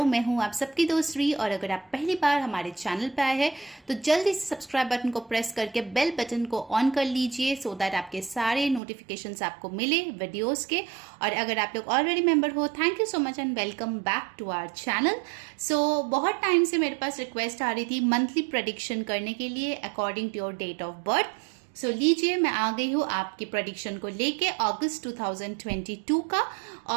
मैं हूं आप सबकी दोस्त री, और अगर आप पहली बार हमारे चैनल पे आए हैं तो जल्दी से सब्सक्राइब बटन को प्रेस करके बेल बटन को ऑन कर लीजिए सो दैट आपके सारे नोटिफिकेशंस आपको मिले वीडियोस के। और अगर आप लोग ऑलरेडी मेंबर हो, thank you so much and welcome back to our channel. So बहुत टाइम से मेरे पास रिक्वेस्ट आ रही थी मंथली प्रेडिक्शन करने के लिए according to your date of birth. So लीजिए, मैं आ गई हूँ आपकी प्रेडिक्शन को लेके अगस्त 2022 का।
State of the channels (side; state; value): left; drops out; at 8.8 s